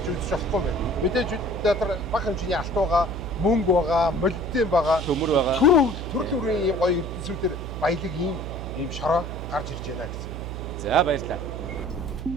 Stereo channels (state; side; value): noise; right; hum, 7 dB below the sound